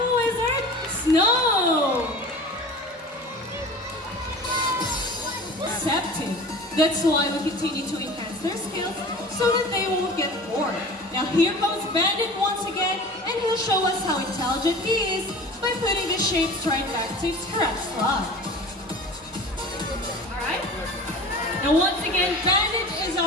wizard, Snow. Receptive. That's why we continue to enhance their skills so that they won't get bored. Now here comes Bandit once again, and he'll show us how intelligent he is by putting the shapes right back to its correct slot. Alright? Now once again, Bandit is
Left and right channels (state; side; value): normal; both; correlation 0.39